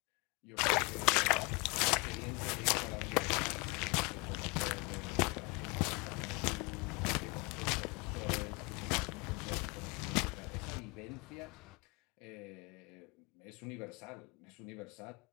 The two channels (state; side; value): quieter; right; 28.5 dB